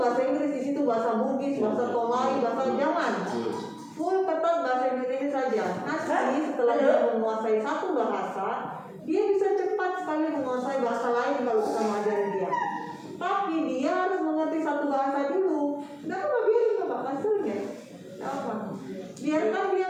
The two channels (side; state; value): both; identical; correlation 1.00